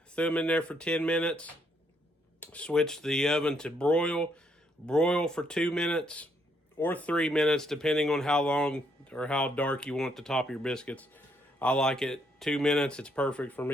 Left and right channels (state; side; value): normal; both; correlation 0.73